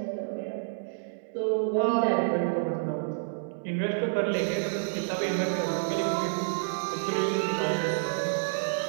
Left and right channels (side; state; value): left; silent; digital silence